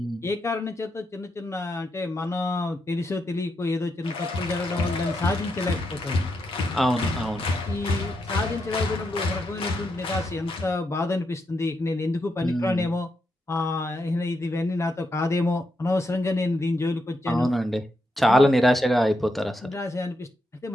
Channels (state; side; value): normal; both; correlation 0.83